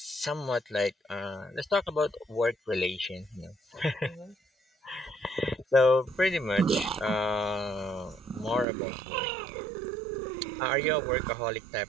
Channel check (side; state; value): left; drops out; at 8.7 s